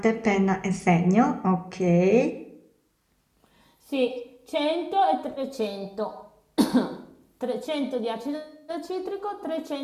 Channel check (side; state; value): both; identical; correlation 1.00